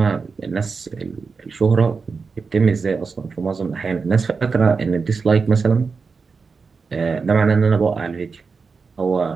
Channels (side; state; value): left; quieter; 4.9 dB